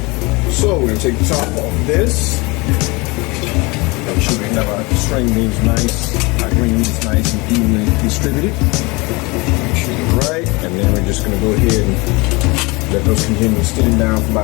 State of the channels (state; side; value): quieter; right; 25.5 dB